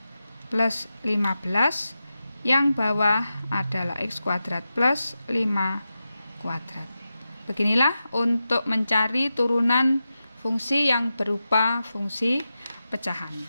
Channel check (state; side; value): inverted; both; correlation -0.91